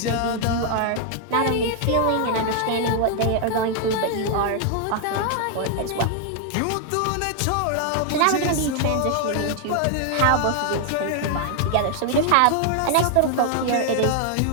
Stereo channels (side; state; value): both; different; correlation 0.00